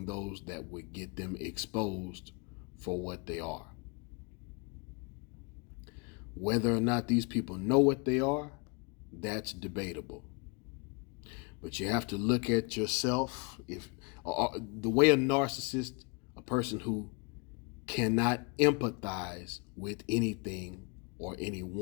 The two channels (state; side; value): quieter; right; 32.9 dB